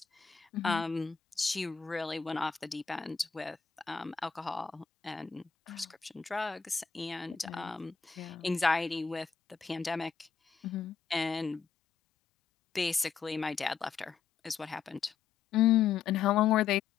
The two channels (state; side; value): quieter; right; 6.5 dB